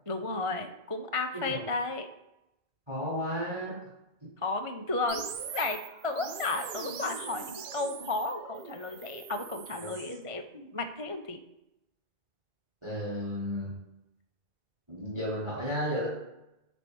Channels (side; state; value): left; late; 2.4 ms